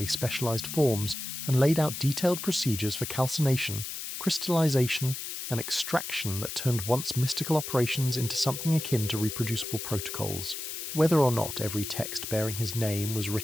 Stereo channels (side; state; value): left; noise; hiss, 7 dB below the sound